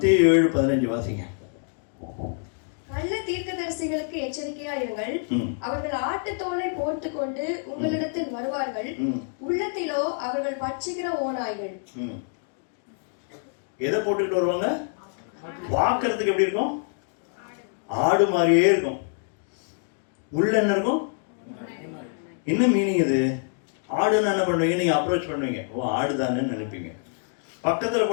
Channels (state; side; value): silent; right; 61 dB below the other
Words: 7:15 வாசிங்க. கள்ள தீர்க்கதரிசிகளுக்கு எச்சரிக்கையா இருங்கள். அவர்கள் ஆட்டுத்தோலை போட்டுக் கொண்டு உங்களிடத்தில் வருவார்கள். உள்ளத்திலோ அவர்கள் பட்சிக்கிற ஓநாய்கள். எதை போட்டுக்கிட்டு வருவாங்க? பார்க்கறதுக்கு எப்படி இருக்கும்? ஆடு மாதிரியே இருக்கும். உள்ள என்ன இருக்கும்? என்ன மீனிங் இது? ஆடுன்னு என்ன பண்ணுவீங்க? நீங்க அப்ரோச் பண்ணுவீங்க, ஓ ஆடுதானு நினைப்பீங்க. பக்கத்துல